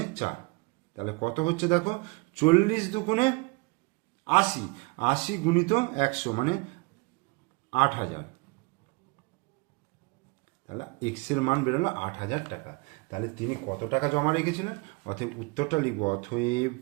4, তাহলে কত হচ্ছে দেখো, 40 দুগুণে 80, 80 গুণিত 100 মানে 8000। তাহলে এক্স এর মান বেরোলো 8000 টাকা। তাহলে তিনি কত টাকা জমা রেখেছিলেন, অতএব উত্তরটা লিখব, অতএব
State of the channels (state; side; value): quieter; left; 28.0 dB